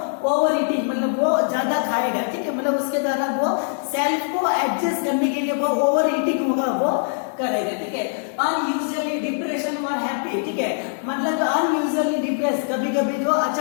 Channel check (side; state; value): right; silent; digital silence